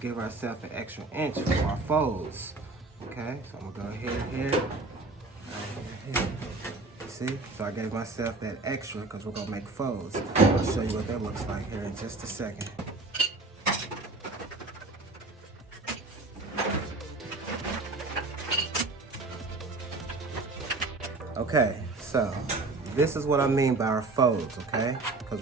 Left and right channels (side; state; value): left; quieter; 3.4 dB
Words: ourselves an extra inch for our folds, okay? So I'm going to go here, right here. You see? So I gave myself that extra because we're going to make folds. I'll show you what that looks like here in just a second. Okay, so this is what I mean by our folds, okay? Because